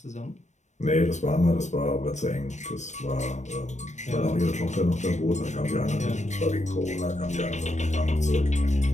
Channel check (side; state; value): right; late; 0.34 ms